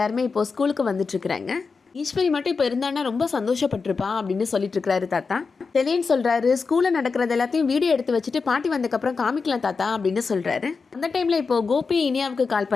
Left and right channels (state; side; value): quieter; right; 4.8 dB